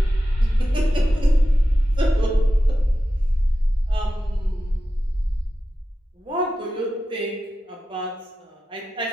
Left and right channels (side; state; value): both; normal; correlation 0.92